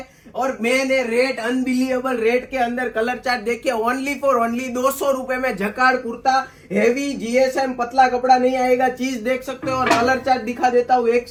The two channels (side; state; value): both; identical; correlation 1.00